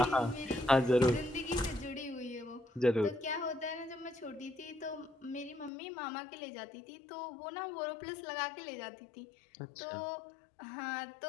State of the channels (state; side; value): drops out; right; at 5.7 s